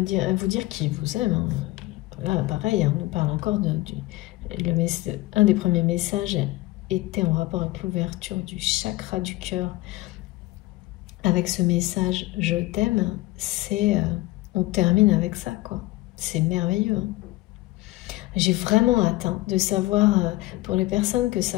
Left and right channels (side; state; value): right; quieter; 19.5 dB